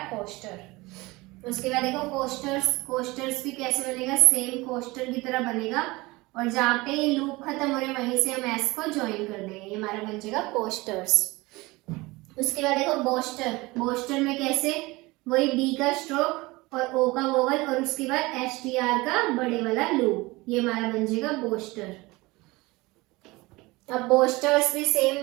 कोस्टर। उसके बाद देखो कोस्टर्स। कोस्टर्स भी कैसे बनेगा? सेम कोस्टर की तरह बनेगा और जहाँ पे ये लूप खत्म हो रहा है वहीं से हम एस को ज्वाइन कर देंगे, ये हमारा बन जाएगा कोस्टर्स। उसके बाद देखो बोस्टर। बोस्टर में कैसे? वही बी का स्ट्रोक और ओ का वोवल और उसके बाद एस टी आर का बड़े वाला लूप, ये हमारा बन जाएगा बोस्टर। अब बोस्टर्स भी सेम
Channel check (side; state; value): left; quieter; 22.2 dB